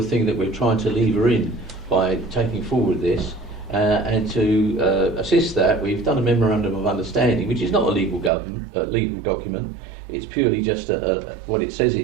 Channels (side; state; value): left; drops out; at 8.3 s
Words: thing that we're trying to lever in by taking forward this. And to assist that, we've done a memorandum of understanding, which is not a legal document. It's purely just what it says